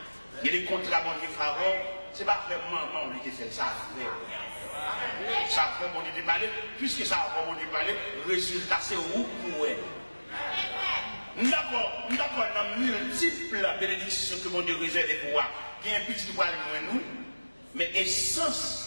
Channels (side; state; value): both; inverted; correlation -1.00